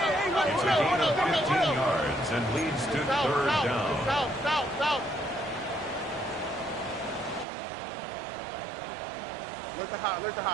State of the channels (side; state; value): left; drops out; at 7.5 s